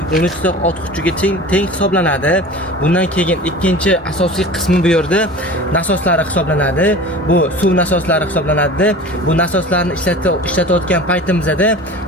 13 ta ot kuchiga teng hisoblanadi. Bundan keyin ikkinchi asosiy qismi bu yerda nasoslari hisoblanadi. Bu suv nasoslari hisoblanadi. Bu nasoslarni ishlatayotgan paytimizda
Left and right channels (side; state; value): both; normal; correlation 0.38